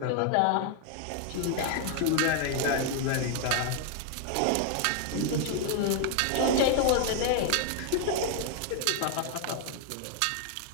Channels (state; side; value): different; both; correlation 0.00